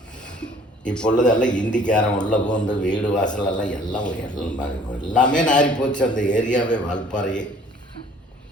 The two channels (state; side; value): normal; both; correlation 0.54